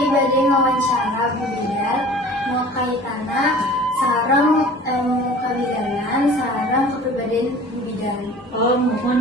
bade ngawancara Bu Bidan mau kaitana sareng kabidanan sareng kepribadian Bu Bidan. Oh,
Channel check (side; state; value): both; normal; correlation 0.44